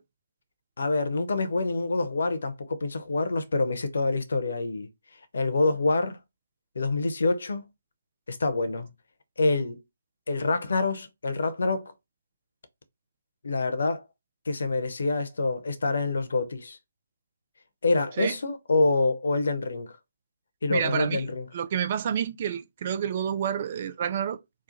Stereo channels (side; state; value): both; inverted; correlation -0.82